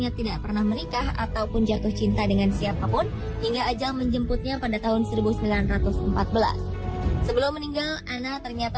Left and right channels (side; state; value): both; identical; correlation 1.00